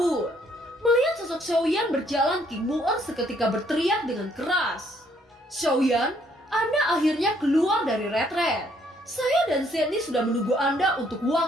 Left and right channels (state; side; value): normal; both; correlation 0.67